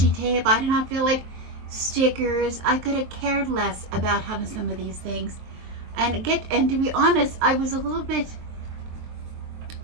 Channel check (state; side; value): late; left; 23 ms